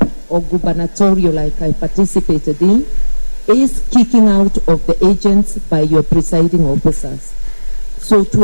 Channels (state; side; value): inverted; both; correlation -1.00